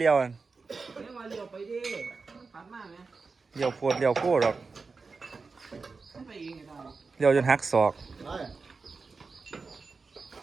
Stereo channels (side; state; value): left; quieter; 4.4 dB